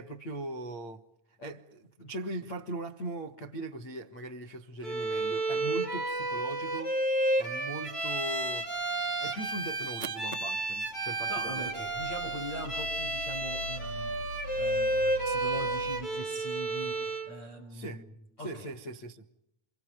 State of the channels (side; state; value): right; late; 9.0 ms